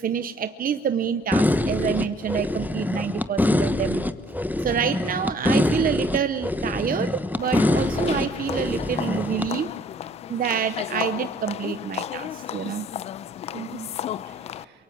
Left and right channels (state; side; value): normal; both; correlation 0.58